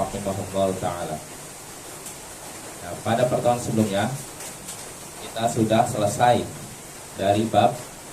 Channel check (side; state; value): both; identical; correlation 1.00